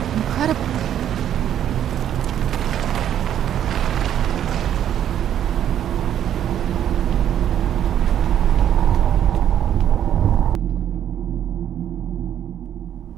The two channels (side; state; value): left; quieter; 10.3 dB